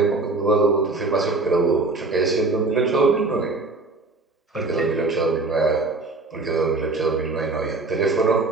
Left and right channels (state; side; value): quieter; left; 3.4 dB